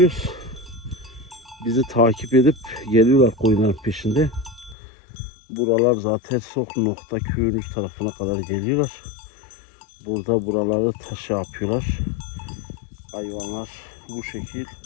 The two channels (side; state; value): right; drops out; at 4.8 s